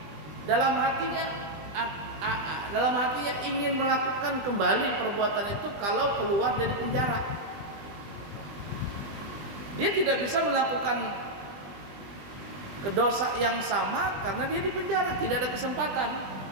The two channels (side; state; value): left; late; 20 ms